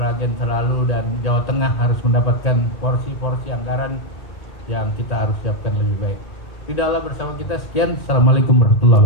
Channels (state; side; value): late; right; 1.8 ms